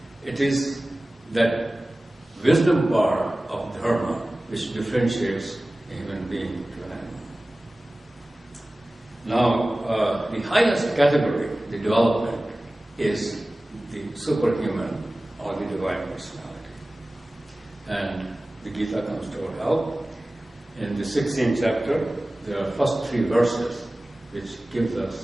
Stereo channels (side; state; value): both; normal; correlation 0.97